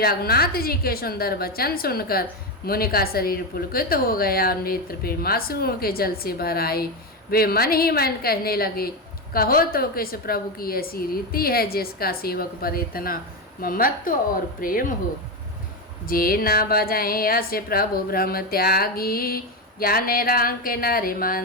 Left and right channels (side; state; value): both; normal; correlation 0.13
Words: रघुनाथ जी के सुंदर वचन सुनकर मुनि का शरीर पुलकित हो गया और नेत्र प्रेमाश्रुओं के जल से भर आए। वे मन ही मन कहने लगे, कहो तो किस प्रभु की ऐसी रीति है जिसका सेवक पर इतना ममत्व और प्रेम हो। जे न बजाए अस प्रभु भ्रम त्यागी ज्ञान रंग नर